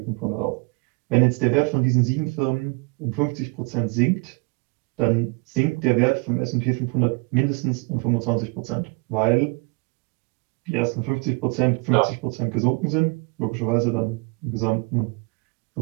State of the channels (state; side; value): quieter; left; 30.3 dB